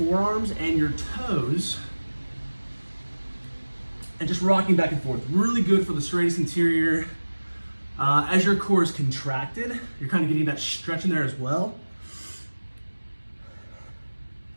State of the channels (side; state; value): both; inverted; correlation -1.00